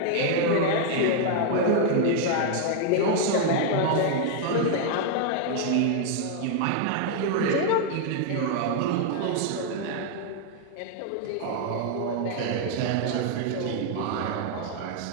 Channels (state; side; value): different; both; correlation 0.00